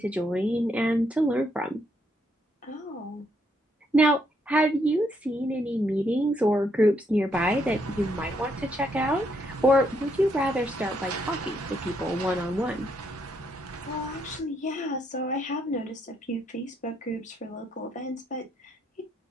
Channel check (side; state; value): both; normal; correlation 0.74